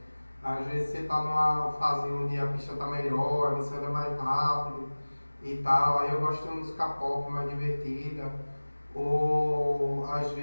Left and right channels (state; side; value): inverted; both; correlation -1.00